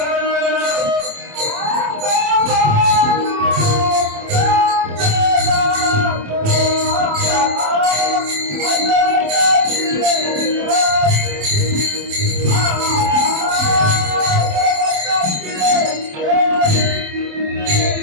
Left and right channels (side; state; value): left; late; 27 ms